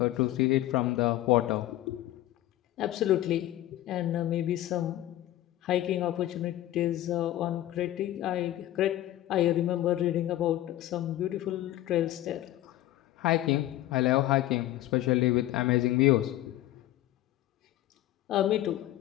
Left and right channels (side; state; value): right; quieter; 14.5 dB